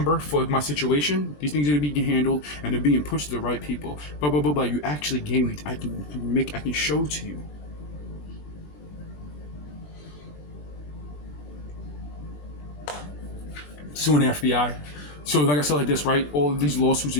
for my situation. These things are being handled and they're being pushed to the right people. Blah blah blah blah. You actually gave me. I can show to you. Suing the FBI. So like I said like this, right? All of these lawsuits are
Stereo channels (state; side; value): late; right; 20 ms